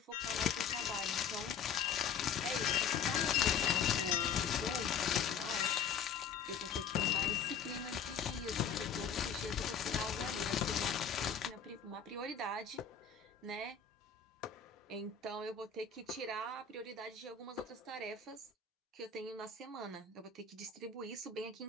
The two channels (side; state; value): right; quieter; 6.7 dB